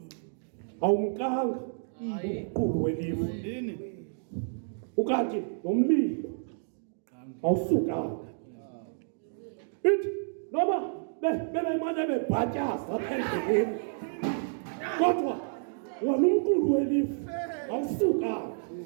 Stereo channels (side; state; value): left; silent; digital silence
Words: Awumkanga umqulu welifu. Ukanti nomlilo awusukanga. Ithi noma bebemane bebhatyaza apha endleleni. Kodwa wona umqulu welifu awusukanga.